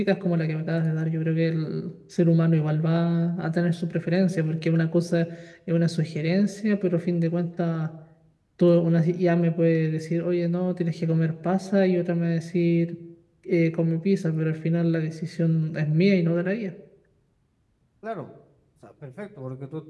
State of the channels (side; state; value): both; identical; correlation 1.00